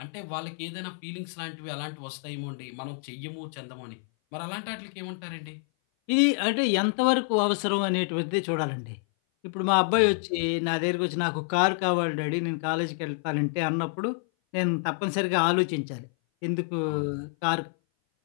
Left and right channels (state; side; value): silent; right; 57 dB below the other